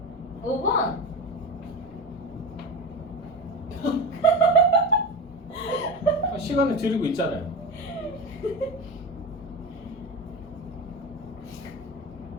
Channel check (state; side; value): normal; both; correlation 0.23